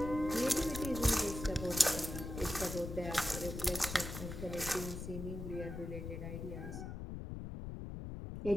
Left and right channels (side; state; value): left; noise; rumble, 7 dB below the sound